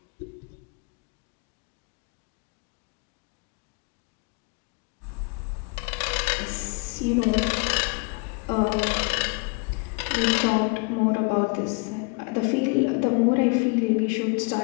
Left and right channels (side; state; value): right; quieter; 32.2 dB